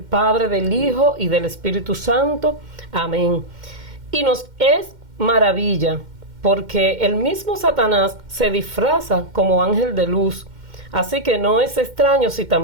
del Hijo y del Espíritu Santo. Amén. Y nos es maravilla, porque el mismo Satanás se disfraza como ángel de luz. Así que no es extraño si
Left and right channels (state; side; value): late; left; 2.1 ms